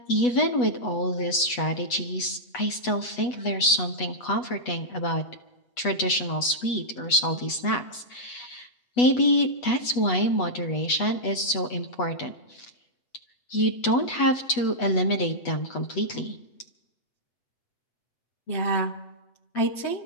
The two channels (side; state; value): right; late; 8.2 ms